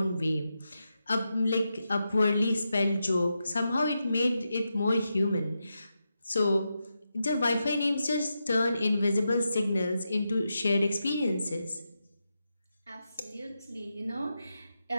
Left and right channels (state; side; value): inverted; both; correlation -0.87